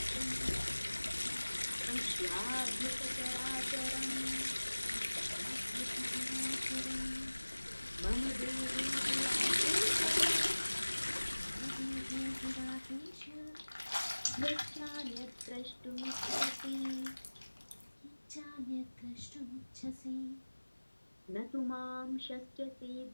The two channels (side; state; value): both; inverted; correlation -1.00